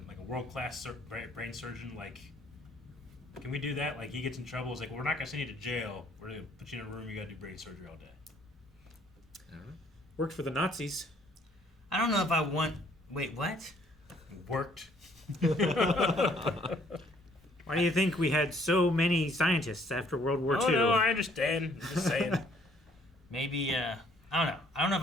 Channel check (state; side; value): normal; both; correlation 0.62